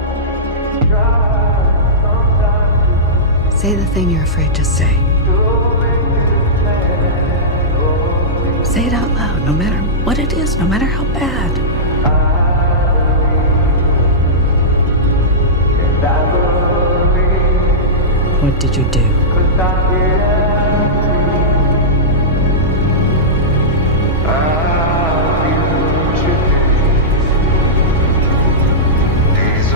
Say the thing you're afraid to say. Say it out loud, no matter what it is, no matter how bad. What did you do?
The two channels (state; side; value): normal; both; correlation -0.15